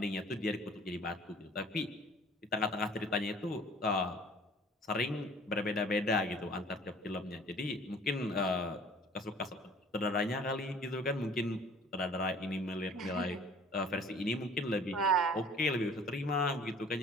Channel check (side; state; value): both; normal; correlation 0.51